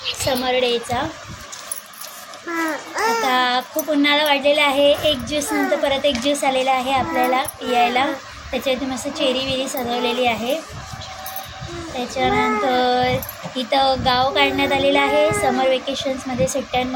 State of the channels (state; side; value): identical; both; correlation 1.00